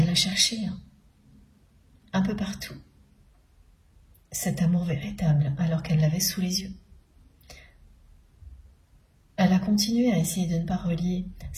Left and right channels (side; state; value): both; identical; correlation 1.00